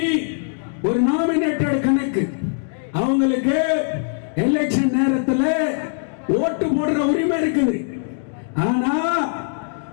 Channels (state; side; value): silent; right; digital silence